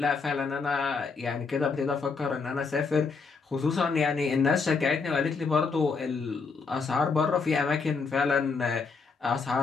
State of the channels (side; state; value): right; quieter; 4.8 dB